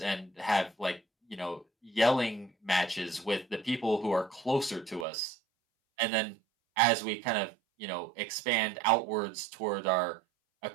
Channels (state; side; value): drops out; left; at 5.1 s